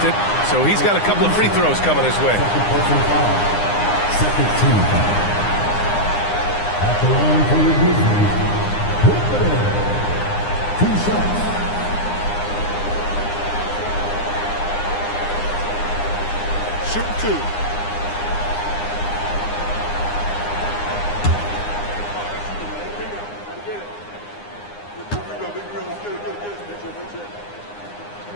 it, so he's got a couple of free throws coming his way. Second team foul. At the line for your Grizzlies, 2 shots. Shoot 2.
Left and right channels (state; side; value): late; right; 9.8 ms